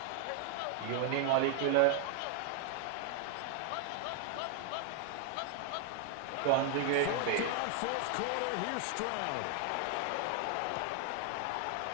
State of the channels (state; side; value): different; both; correlation 0.00